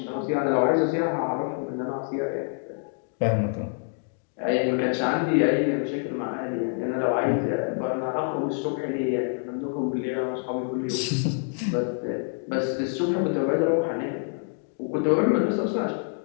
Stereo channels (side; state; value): right; silent; 56 dB below the other